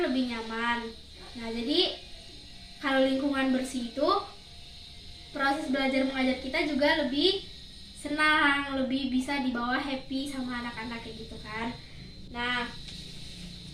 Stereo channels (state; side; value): identical; both; correlation 1.00